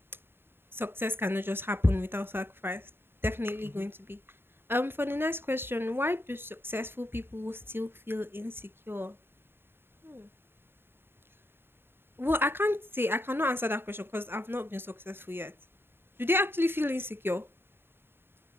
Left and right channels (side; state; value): left; late; 0.11 ms